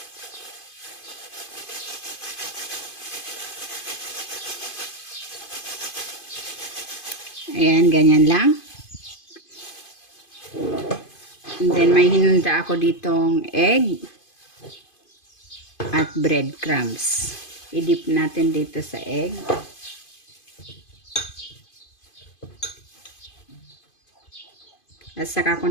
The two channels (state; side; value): late; right; 2.5 ms